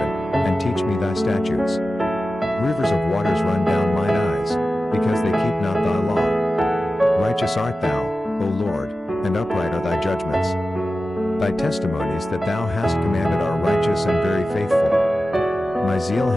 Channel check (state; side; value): normal; both; correlation 0.94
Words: and teach me thy statutes. Rivers of waters run down mine eyes, because they keep not thy law. Righteous art thou, O Lord, and upright are thy judgments. Thy testimonies that thou hast commanded are righteous and very faithful. My zeal